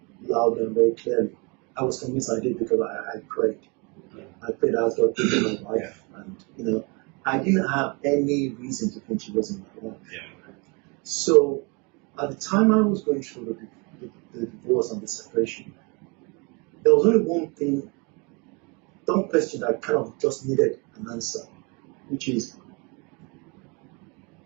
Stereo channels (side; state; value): left; quieter; 29.8 dB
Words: loud and very clearly. I was convinced I did because I prayed. I prayed as God gave me my wife. And, I didn't have any reason to think she wasn't my wife. So, at the time I was going through the divorce and the separation, there was only one question that kind of just needed an answer, which is,